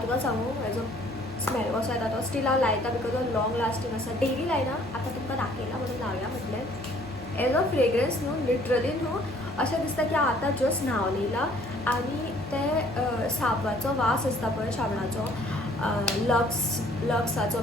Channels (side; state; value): both; normal; correlation 0.58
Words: तुका सांगू हेजो स्मेल कसो येता तो स्टील हांव लायता बिकॉज हो लॉंग लास्टींग आसा. डेली लायना आतां तुमकां दाखयला म्हणून लावया म्हटलें. एज अ फ्रेग्रन्स न्हू लिटरली न्हू अशें दिसता की हांव आतां जस्ट न्हांवन येयला आनी ते साबणाचो वास आसता पळय शाबणाचो लक्साचो